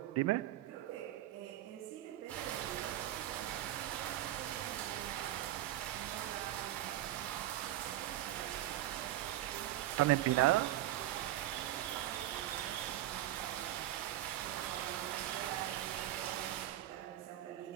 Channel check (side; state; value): left; quieter; 13.9 dB